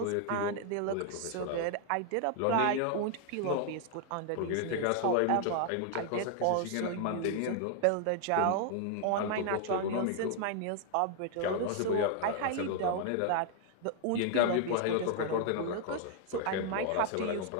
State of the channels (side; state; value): both; different; correlation 0.00